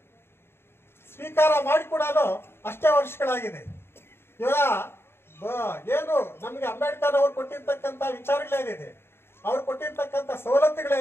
ಸ್ವೀಕಾರ ಮಾಡಿ ಕೂಡ ಅಷ್ಟೇ ವರ್ಷಗಳಾಗಿದೆ. ಇವಾಗ ಏನು ನಮ್ಗೆ ಅಂಬೇಡ್ಕರ್ ಅವ್ರು ಕೊಟ್ಟಿರ್ತಕ್ಕಂಥ ವಿಚಾರಗಳೇನಿದೆ, ಅವ್ರು ಕೊಟ್ಟಿರ್ತಕ್ಕಂಥ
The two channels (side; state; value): right; late; 0.11 ms